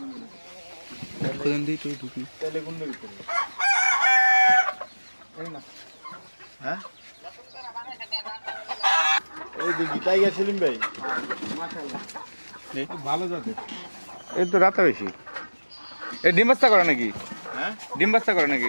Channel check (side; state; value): both; inverted; correlation -1.00